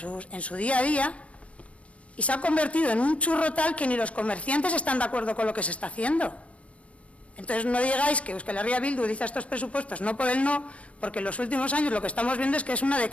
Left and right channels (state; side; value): late; right; 0.063 ms